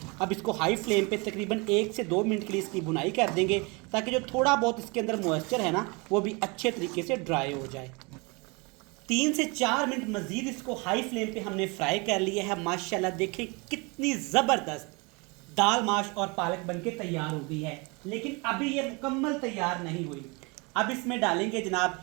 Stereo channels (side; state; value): left; quieter; 28.7 dB